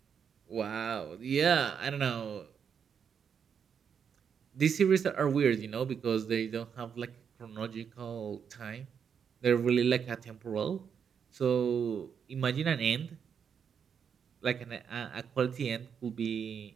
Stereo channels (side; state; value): left; quieter; 7.2 dB